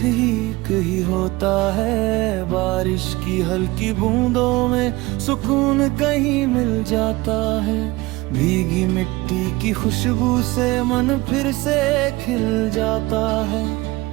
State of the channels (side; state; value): left; quieter; 20.9 dB